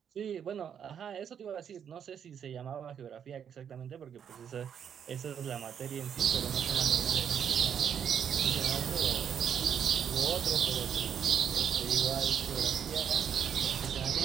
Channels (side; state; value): left; quieter; 8.2 dB